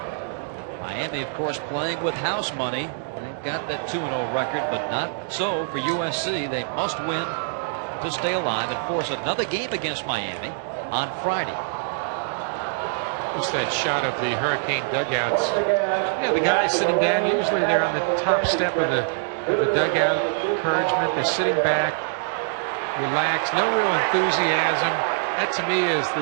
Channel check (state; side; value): silent; left; digital silence